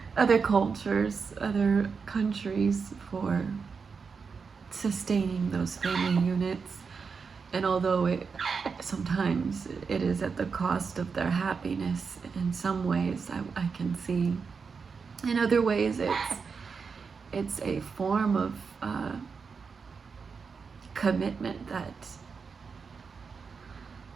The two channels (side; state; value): left; quieter; 5.4 dB